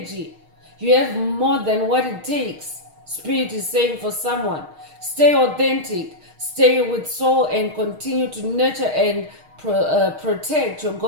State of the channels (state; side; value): late; left; 6.4 ms